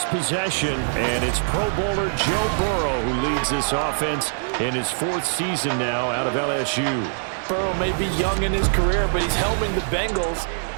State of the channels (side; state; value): left; silent; 63 dB below the other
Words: possession, and it's Pro Bowler Joe Burrow who leads this offense in his 4th season now out of LSU. Burrow may be young in his career, but he's helming the Bengals